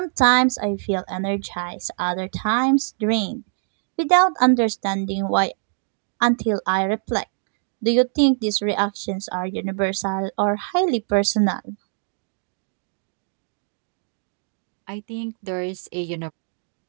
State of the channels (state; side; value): silent; left; 63 dB below the other